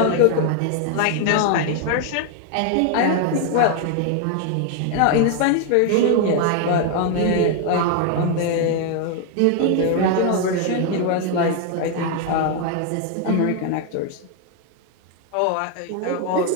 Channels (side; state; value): both; different; correlation 0.00